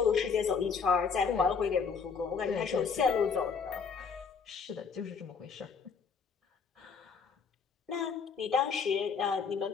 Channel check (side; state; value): right; quieter; 5.8 dB